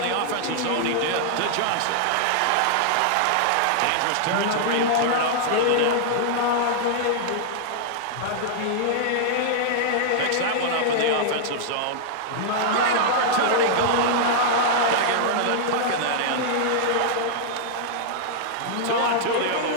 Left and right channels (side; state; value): both; different; correlation -0.01